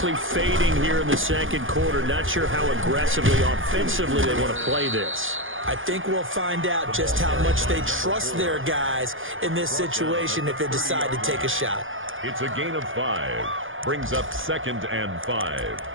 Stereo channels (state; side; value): late; left; 0.58 ms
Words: fading here in the 2nd quarter, not sure how aggressively offensively they want to play this. I think we'll find out just how much they trust their guys in this situation if they decide to take a shot. It's a gain of 5. Brings up 2nd and 5.